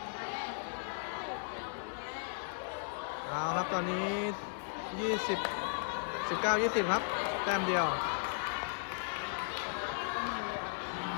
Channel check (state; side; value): silent; right; digital silence